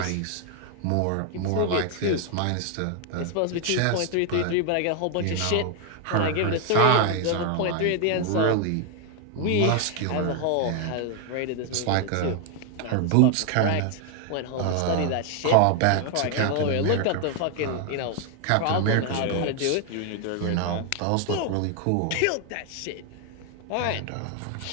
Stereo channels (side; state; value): both; different; correlation 0.00